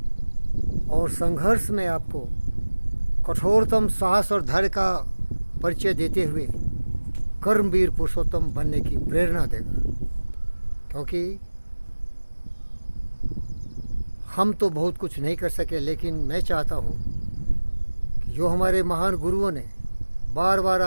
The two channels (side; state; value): both; inverted; correlation -1.00